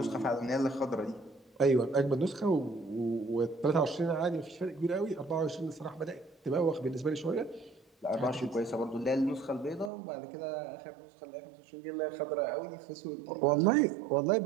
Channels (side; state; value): left; drops out; at 9.9 s